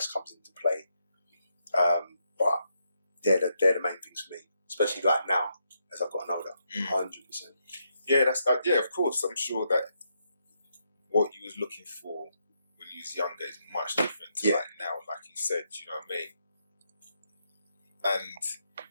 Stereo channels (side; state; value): both; inverted; correlation -0.79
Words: comes into play. But they're the main things for me, especially like now as I've gotten older. 100%. Yeah, that's of course. I'm sure that what you was looking for when you was younger is much different to like now, like you said. You know what I mean? And